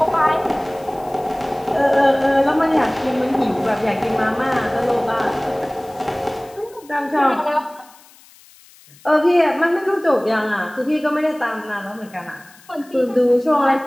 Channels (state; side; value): noise; left; hiss, 26 dB below the sound